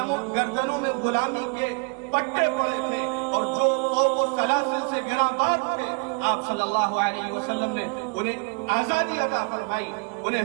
میں غلامی کے پٹے پڑے تھے اور جو قوم و سلاسل سے گراباد تھے، آپ صلی اللہ علیہ وسلم نے انہیں آزادی عطا فرمائی،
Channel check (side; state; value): left; quieter; 34.1 dB